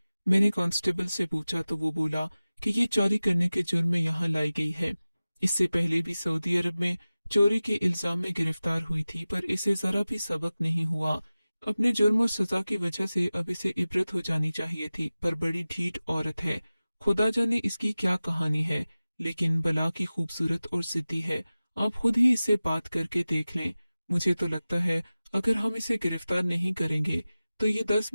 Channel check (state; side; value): inverted; both; correlation -0.97